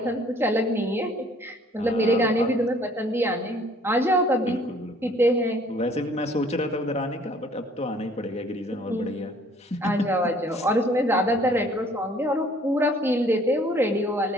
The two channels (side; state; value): both; normal; correlation 0.57